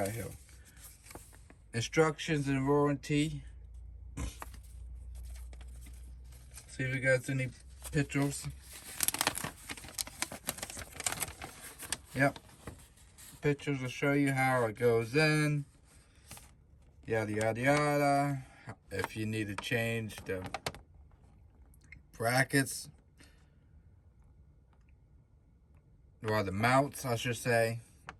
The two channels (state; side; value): identical; both; correlation 1.00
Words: here? Instructions and warranty. See if we got any pictures. Yep. Pictures will show you how it goes in. Yada yada yada. If you need to change the brackets, or the mounts, I should say,